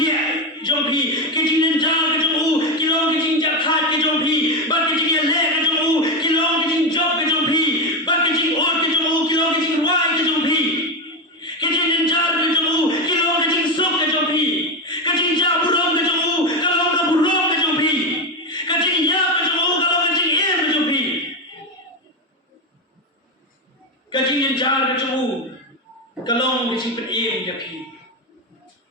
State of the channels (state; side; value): normal; both; correlation 0.14